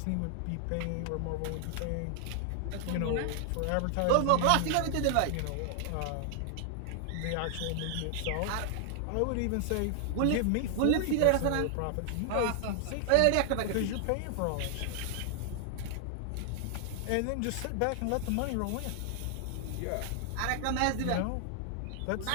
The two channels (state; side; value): different; both; correlation 0.00